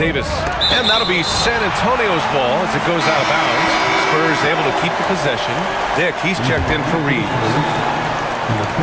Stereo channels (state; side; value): identical; both; correlation 1.00